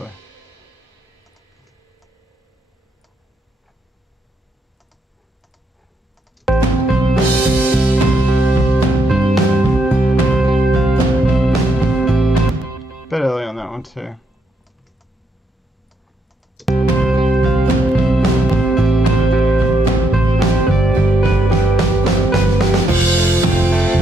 Bit early on that one too.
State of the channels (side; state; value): both; normal; correlation 0.77